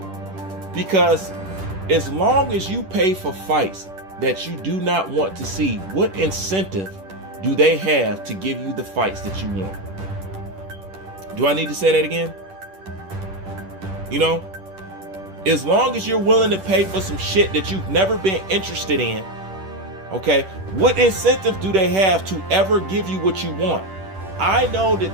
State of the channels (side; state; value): left; late; 10 ms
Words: because as long as you pay for fights that you do not want to see, what incentive do they have to give you the fights that you want? Do I need to say that again? As long as you're willing to pay for some shit that you've never been interested in, okay, what incentive do they have to ever give you what you want? I know